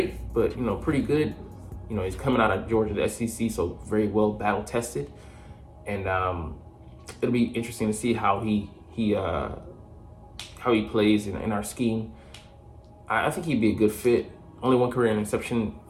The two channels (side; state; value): both; identical; correlation 1.00